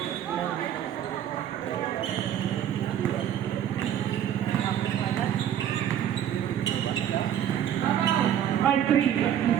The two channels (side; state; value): left; quieter; 10.3 dB